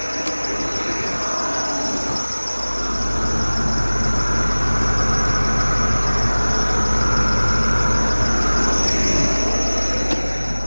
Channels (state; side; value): inverted; both; correlation -1.00